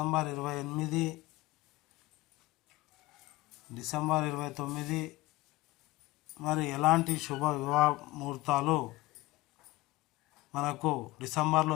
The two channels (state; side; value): quieter; right; 19.6 dB